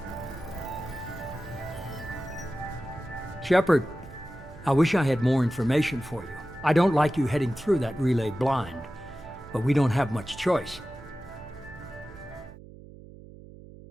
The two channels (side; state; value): right; noise; hum, 18 dB below the sound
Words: Shepard, I wish I had more information for you. I don't like you heading through that relay blind, but we don't have much choice.